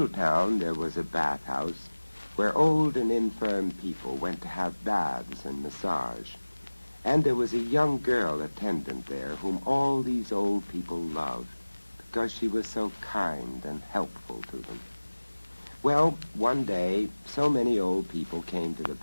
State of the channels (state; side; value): inverted; both; correlation -1.00